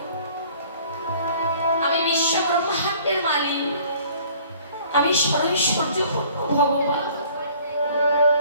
আমি বিশ্ব ব্রহ্মাণ্ডের মালিক, আমি সর্বৈশ্বর্যপূর্ণ ভগবান,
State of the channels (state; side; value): inverted; both; correlation -0.54